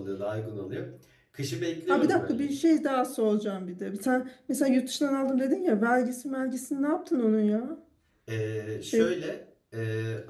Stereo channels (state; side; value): identical; both; correlation 1.00